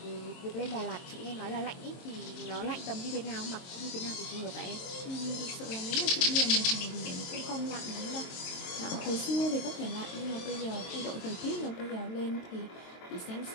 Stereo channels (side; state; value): right; late; 23 ms